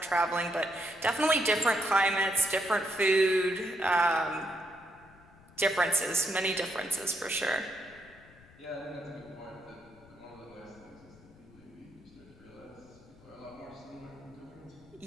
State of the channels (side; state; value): left; noise; rumble, 24 dB below the sound